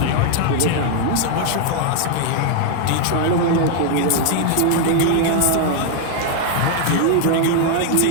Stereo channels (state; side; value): different; both; correlation 0.00